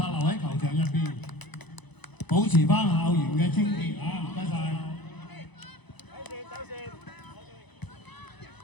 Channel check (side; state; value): right; late; 1.0 ms